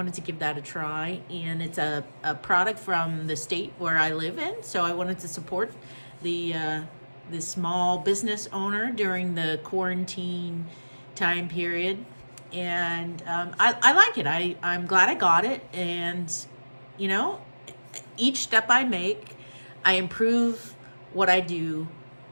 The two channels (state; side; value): inverted; both; correlation -1.00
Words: to give that a try. And it's a product from the state where I live in, so I wanted to support the small business owner during the quarantine time period. And I like it. I'm glad I got it. And you know, each step I make, I improve what I do